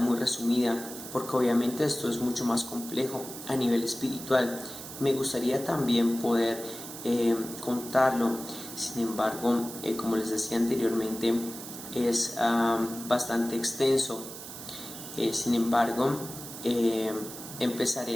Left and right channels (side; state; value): right; noise; hiss, 11 dB below the sound